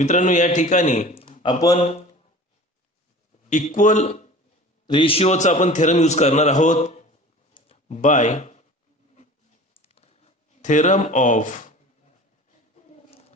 या ठिकाणी आपण इक्वल रेशिओचा आपण थेरम यूज करणार आहोत. By theorem of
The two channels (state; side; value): normal; both; correlation 0.40